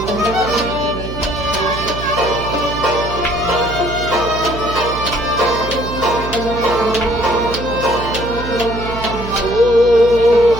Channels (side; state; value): right; noise; hum, 8 dB below the sound